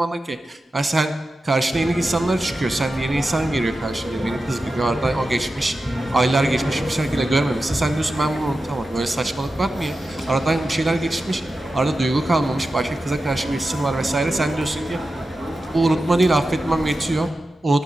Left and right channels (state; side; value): normal; both; correlation 0.92